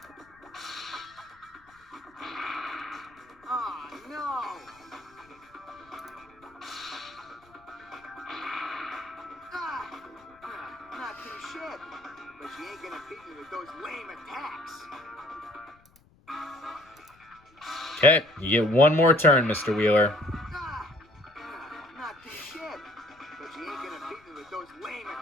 Oh no! Not too shit, but you ain't gonna beat me with those lame attacks. Okay, you get one more turn, Mr. Wheeler. Not too shit, but you ain't gonna beat me with those lame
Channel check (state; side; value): noise; left; rumble, 29 dB below the sound